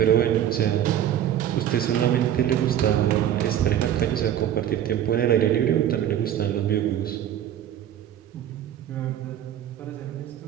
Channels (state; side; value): quieter; left; 10.9 dB